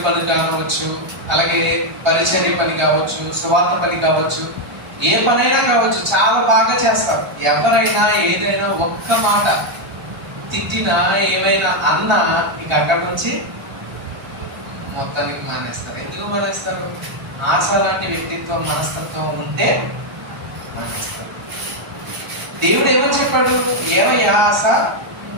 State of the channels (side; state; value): left; late; 1.2 ms